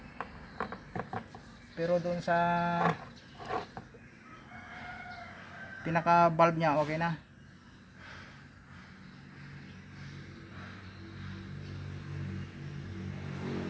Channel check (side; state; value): both; identical; correlation 1.00